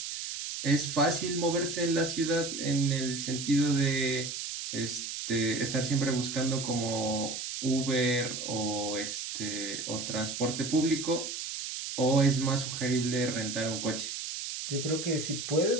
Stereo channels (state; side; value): noise; right; hiss, 6 dB below the sound